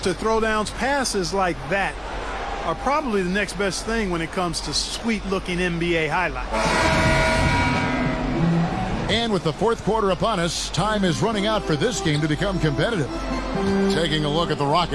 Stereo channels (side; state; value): both; identical; correlation 1.00